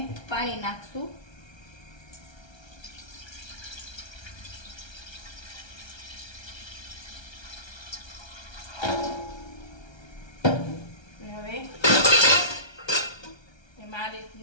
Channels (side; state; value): right; late; 1.3 ms